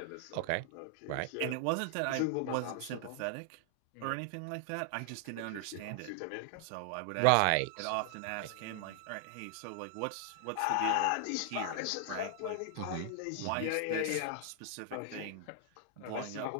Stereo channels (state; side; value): different; both; correlation 0.00